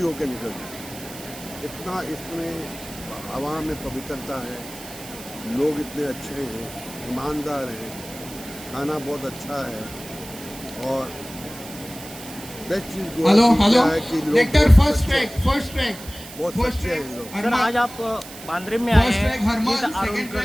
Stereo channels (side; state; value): right; noise; hiss, 15 dB below the sound